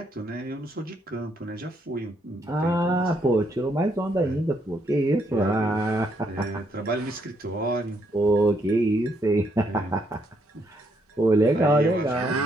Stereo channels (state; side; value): normal; both; correlation 0.73